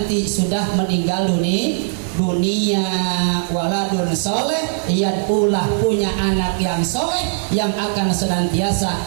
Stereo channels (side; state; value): left; silent; 66 dB below the other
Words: sudah meninggal dunia. Waladun soleh, ia pula punya anak yang soleh yang akan